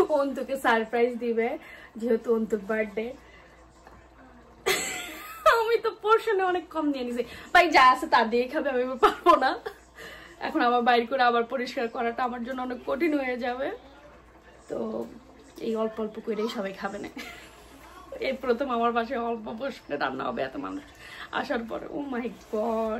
অন্তুকে সারপ্রাইজ দিবে যেহেতু অন্তুর বার্থডে। আমি তো পোর্শনে অনেক কম নিয়ে নিছি, ভাই যা আছে তা দিয়ে খাবে, আমি পারবো না। এখন আবার বাইর করে আবার পরিষ্কার করাটা আমার জন্য অনেক কঠিন হয়ে যাবে। তো এই অল্প অল্প করেই সবাই খাবে না। এই প্রথম আমার বাসায় অল্প পোর্শনে রান্না হবে এত মানুষ আসার পরে। ও মাই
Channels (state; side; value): identical; both; correlation 1.00